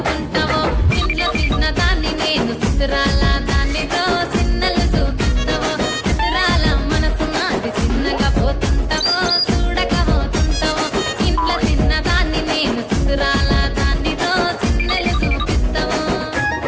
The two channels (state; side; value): identical; both; correlation 1.00